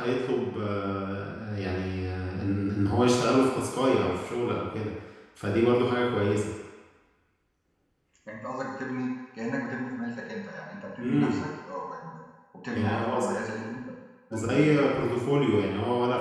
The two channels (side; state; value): both; identical; correlation 1.00